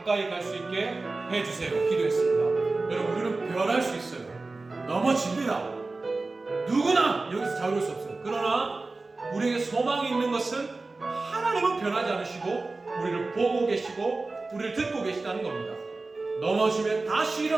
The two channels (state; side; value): quieter; left; 3.5 dB